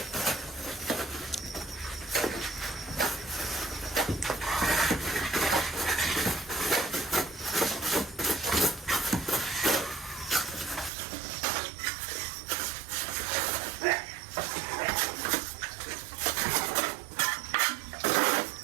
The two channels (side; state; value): left; drops out; at 10.9 s